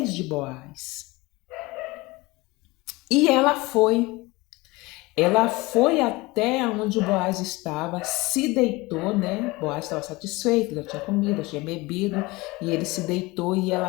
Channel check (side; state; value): right; quieter; 22.3 dB